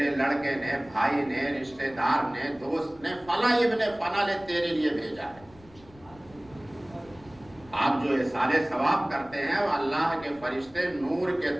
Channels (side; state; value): left; noise; rumble, 25 dB below the sound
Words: لڑکے نے، بھائی نے، رشتہ دار نے، دوست نے، فلاں ابن فلاں نے تیرے لیے بھیجا ہے۔ آپ جو احسان ثواب کرتے ہیں وہ اللہ کے فرشتے نور کے